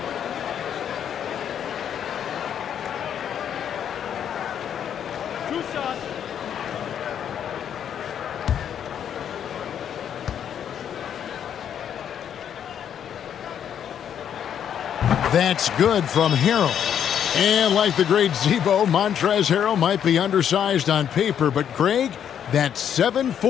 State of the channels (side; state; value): right; quieter; 9.0 dB